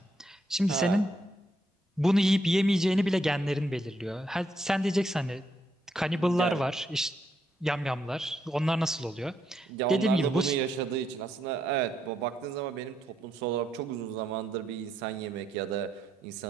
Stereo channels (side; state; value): both; normal; correlation 0.77